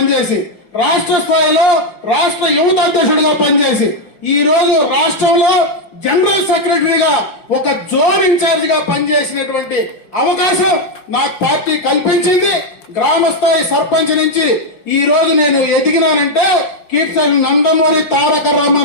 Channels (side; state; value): right; late; 5.6 ms